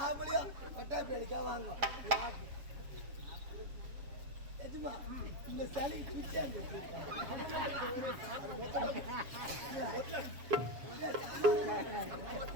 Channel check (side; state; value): left; late; 7.3 ms